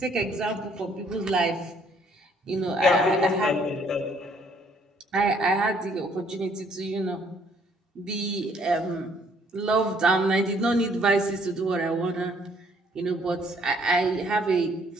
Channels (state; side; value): normal; both; correlation 0.64